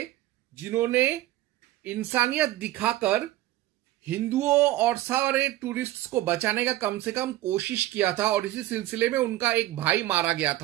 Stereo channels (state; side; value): quieter; left; 15.8 dB